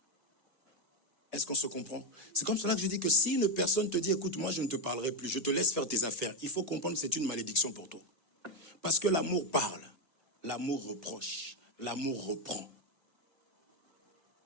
Est-ce qu'on se comprend? C'est comme cela que je dis que si une personne te dit écoute, moi je ne te parlerai plus, je te laisse faire tes affaires, il faut comprendre que c'est une malédiction pour toi. Parce que l'amour parle, l'amour reproche, l'amour reprend.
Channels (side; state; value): both; normal; correlation 0.07